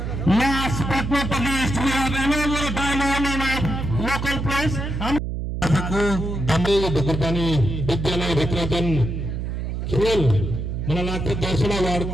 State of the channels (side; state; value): right; noise; hum, 4 dB below the sound